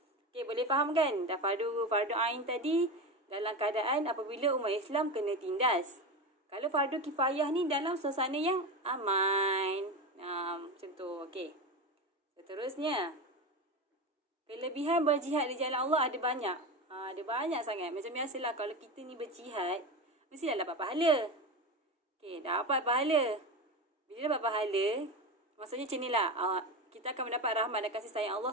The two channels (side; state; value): both; normal; correlation 0.21